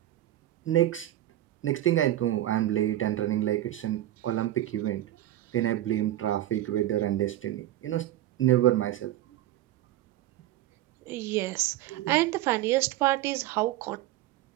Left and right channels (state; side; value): quieter; left; 14.0 dB